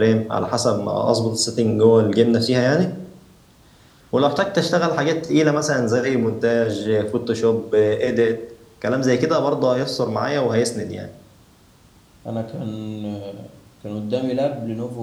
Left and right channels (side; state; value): both; identical; correlation 1.00